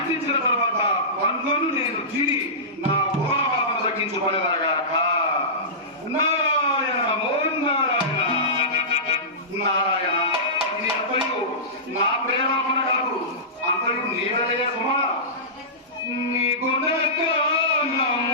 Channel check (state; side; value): normal; both; correlation -0.20